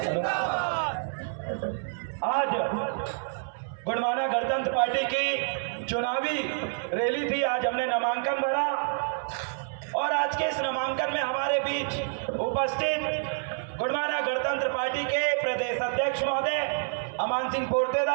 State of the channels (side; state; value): left; silent; 57 dB below the other